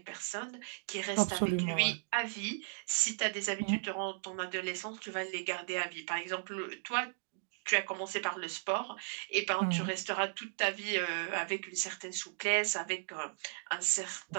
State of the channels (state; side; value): silent; left; digital silence